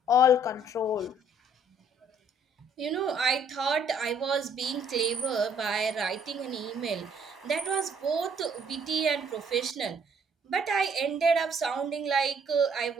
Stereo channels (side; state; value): both; normal; correlation 0.62